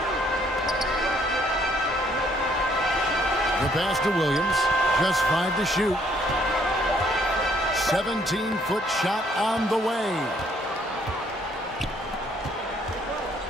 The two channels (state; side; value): normal; both; correlation 0.66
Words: Pass to Williams. Just 5 to shoot. 17-foot shot on the way.